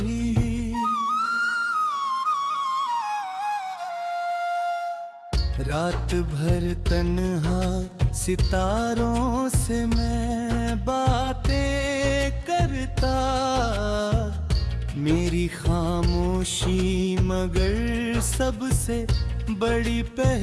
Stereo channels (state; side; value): identical; both; correlation 1.00